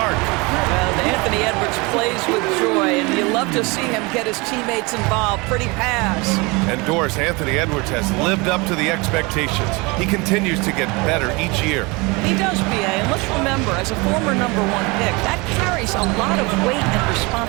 Well, Anthony Edwards plays with joy, and you love to see him get his teammates involved. Pretty pass. And Doris, Anthony Edwards has lived up to the expectations. He continues to get better each year. He does, B.A., and let's remember, as a former #1 pick, that carries a lot of weight and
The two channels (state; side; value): quieter; left; 26.3 dB